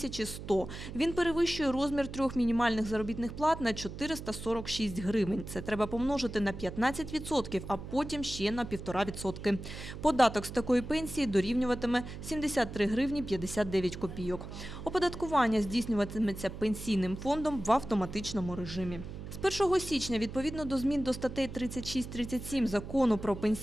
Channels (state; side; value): noise; right; hum, 10 dB below the sound